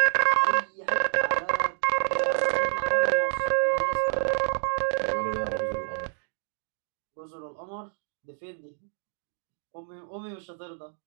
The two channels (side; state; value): left; silent; digital silence